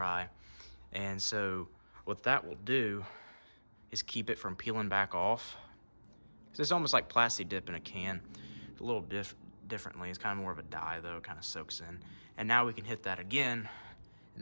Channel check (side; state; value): both; inverted; correlation -1.00